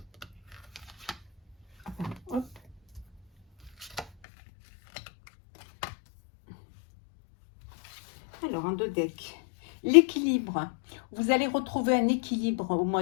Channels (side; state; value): right; drops out; at 4.0 s